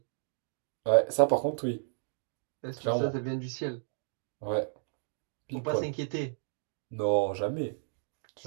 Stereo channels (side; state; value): left; silent; digital silence